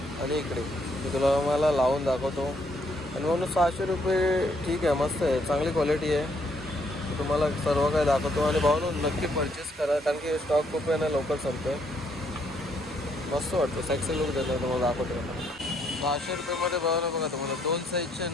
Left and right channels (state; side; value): normal; both; correlation 0.71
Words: आणि इकडे. मी तुला मला लावून दाखवतो आणि म्हणून 600 रुपये ठीक आहे, मस्त आहे, चांगली क्वालिटी आहे. तुम्हाला सर्व काय दाखवतो आणि भाऊ नक्की परचेस करा, कारण की स्टॉक खूप आहे ना, लवकर संपतो आहे. मस्त वाटतं, सेक्सी लुक देतो. तुम्हाला दाखवतो. 600 रुपयेमध्ये भाऊ बघा, तुम्हाला 2 साईजचे